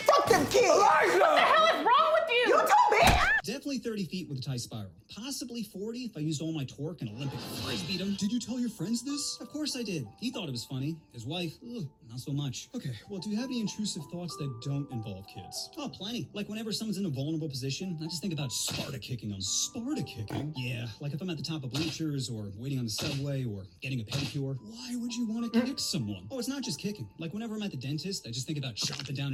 Fuck them kids! Elijah! What the hell is wrong with you? You told me! Definitely 30 feet with a tight spiral. Possibly 40 if I used all my torque and Olympic frisbeed him. Did you tell your friends this? Of course I did. He thought it was funny. His wife, not so much. Okay, well, do you have any intrusive thoughts that don't involve kids? Oh, plenty. Like whenever someone's in a vulnerable position, I just think about Sparta kicking them. Sparta kicking? Yeah, like if I'm at the top of bleachers or waiting on the subway or getting a pedicure. Why would you want to kick someone? Oh, it's not just kicking. Like whenever I'm at the dentist, I just think about chomping down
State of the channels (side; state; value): both; identical; correlation 1.00